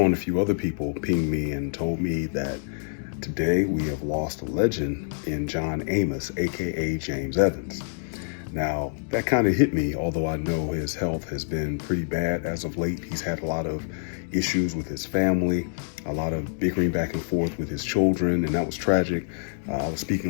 a few other people pinged me and told me that today we have lost a legend in John Amos, aka James Evans. Now, that kind of hit me, although I know his health has been pretty bad as of late. He's had a lot of issues with his family, a lot of bickering back and forth with his children, and that was tragic. I was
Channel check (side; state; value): right; silent; digital silence